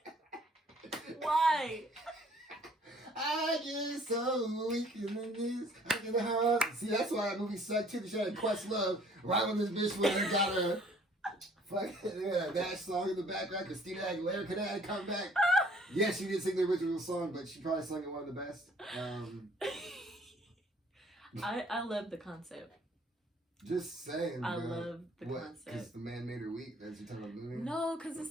Why? I get so weak in the knees. I get the heart. See, that's why that movie sucked too. She had a Quest Love right when this bitch went and got her fucking that song in the background. Christina Aguilera could have come back. Yeah, she did sing the original song, but she probably sung it one of the best. I love the concept. Just saying, I love the concept. Because the man made her weak? That's you talking about the movie? No, because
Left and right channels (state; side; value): normal; both; correlation 0.57